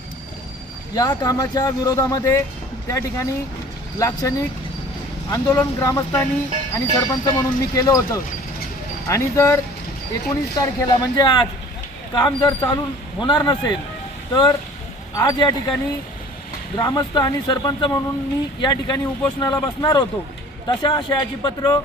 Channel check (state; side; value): normal; both; correlation 0.48